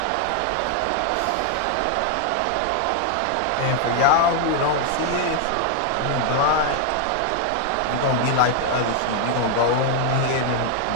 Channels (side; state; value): both; different; correlation 0.00